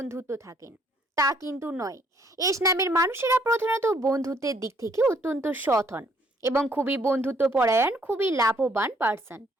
থাকেন? তা কিন্তু নয়। এস নামের মানুষেরা প্রধানত বন্ধুত্বের দিক থেকে অত্যন্ত সৎ হন এবং খুবই বন্ধুত্ব পরায়ণ, খুবই লাভবান পার্সন,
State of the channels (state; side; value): normal; both; correlation 0.66